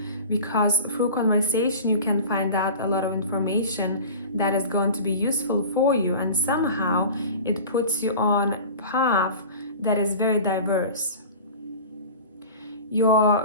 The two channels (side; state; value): both; inverted; correlation -0.37